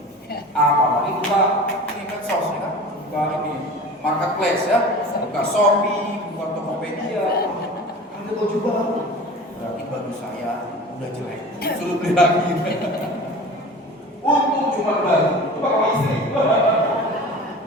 Apalagi buka ini medsos ya kan, buka ini marketplace ya, buka Shopee, buka Tokopedia, ada baju baru, berarti baju saya udah jelek, suruh beli lagi. Untung cuma baju, coba sama istri,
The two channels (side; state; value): both; normal; correlation 0.37